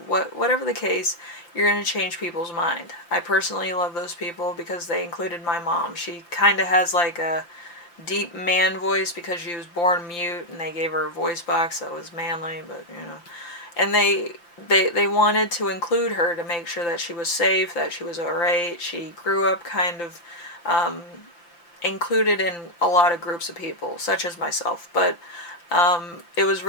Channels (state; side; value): late; right; 5.8 ms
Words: whatever the case, you're going to change people's mind. I personally love those people because they included my mom. She kind of has like a deep man voice because she was born mute, and they gave her a voice box that was manly, but and they wanted to include her to make sure that she was safe, that she was alright. She grew up kind of included in a lot of groups of people, such as myself, but it was